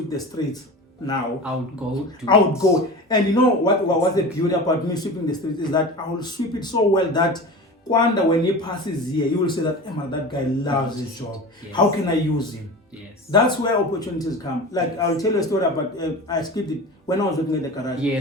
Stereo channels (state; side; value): normal; both; correlation 0.32